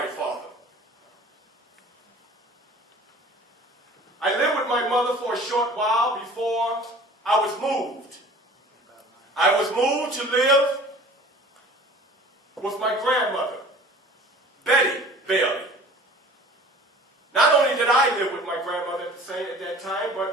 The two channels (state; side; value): normal; both; correlation 0.45